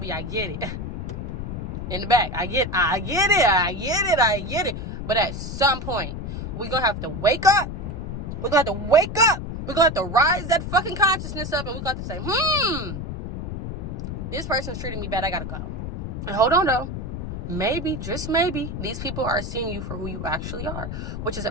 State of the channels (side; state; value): left; noise; rumble, 6 dB below the sound